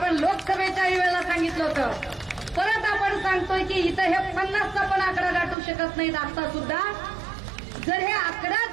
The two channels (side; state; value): left; drops out; at 5.6 s